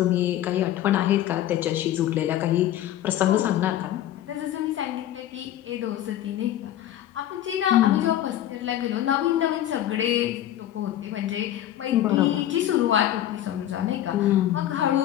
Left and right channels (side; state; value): right; quieter; 12.4 dB